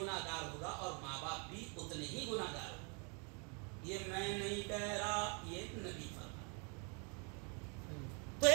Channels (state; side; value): quieter; left; 35.8 dB